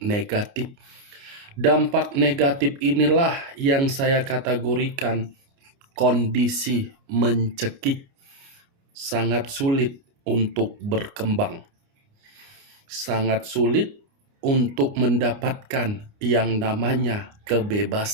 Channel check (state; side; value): late; left; 29 ms